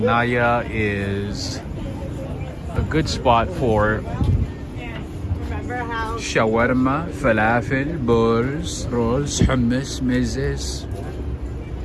is a good spot for shawarma, falafel, bowls, rolls, hummus, mezes,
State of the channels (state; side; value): identical; both; correlation 1.00